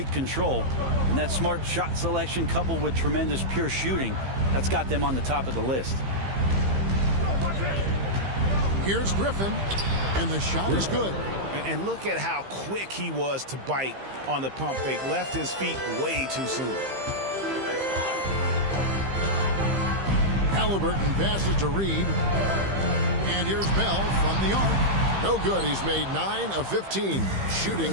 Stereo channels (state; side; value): late; left; 15 ms